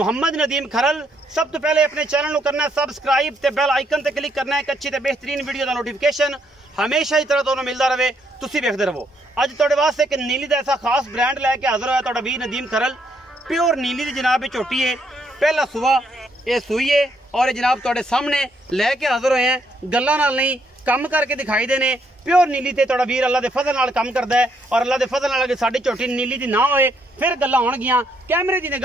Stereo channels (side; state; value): both; normal; correlation 0.73